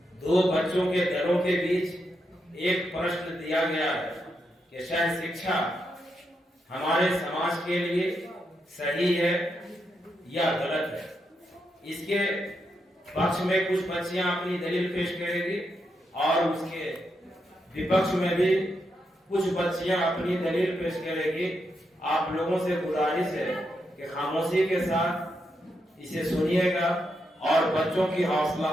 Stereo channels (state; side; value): normal; both; correlation 0.83